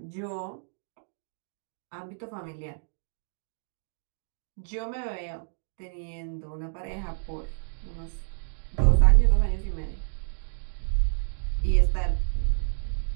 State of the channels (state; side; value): silent; left; digital silence